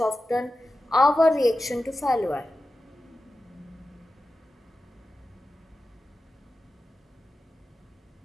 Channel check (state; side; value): normal; both; correlation 0.93